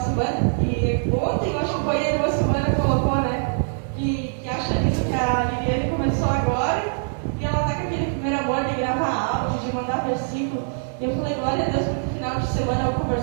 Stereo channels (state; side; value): silent; left; 63 dB below the other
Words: semana, e ontem, eu acho que foi aí uma semana, colocou, né? Que acha lindo que a Liliane começou agora, e ela tá com aquele primeiro amor de gravar áudio, de mandar versículo. E eu falei, glória a Deus, porque no final de semana eu